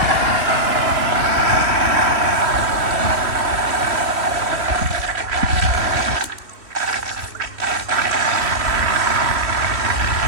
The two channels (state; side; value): late; left; 3.1 ms